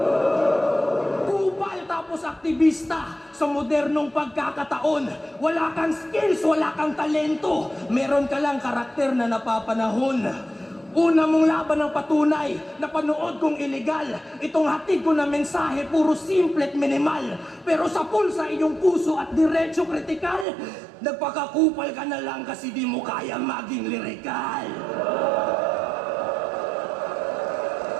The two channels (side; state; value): left; drops out; at 20.5 s